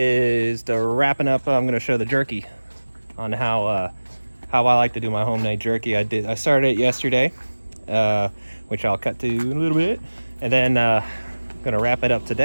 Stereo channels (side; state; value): both; inverted; correlation -1.00